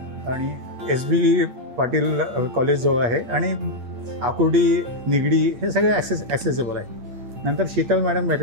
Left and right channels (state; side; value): late; left; 8.9 ms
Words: आणि SB पाटील कॉलेज जवळ आहे आणि आकुर्डी निगडी हे सगळे ॲक्सेसिबल आहे. नंतर शीतल मॅडम